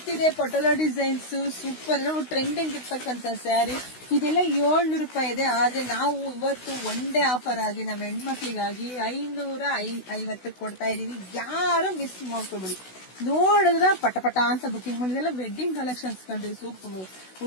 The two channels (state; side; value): late; right; 16 ms